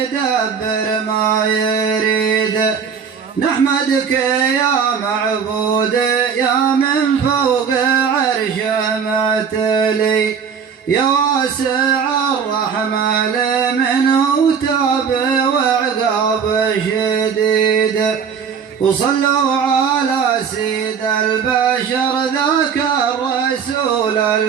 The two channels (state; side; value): quieter; left; 6.8 dB